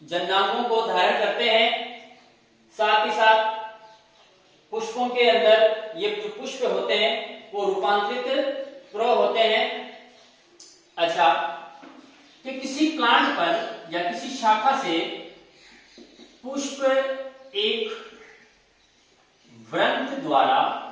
जननांगों को धारण करते हैं। साथ ही साथ पुष्पों के अंदर ये जो पुष्प होते हैं वो रूपांतरित प्रो होते हैं। अच्छा, कि किसी प्लांट पर या किसी शाखा से पुष्प एक व्रंत द्वारा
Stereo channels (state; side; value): identical; both; correlation 1.00